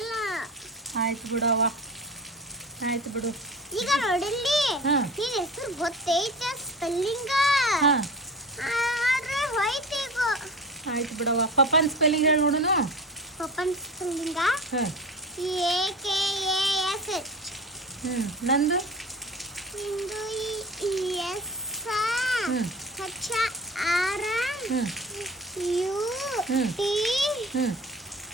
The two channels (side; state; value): both; normal; correlation 0.35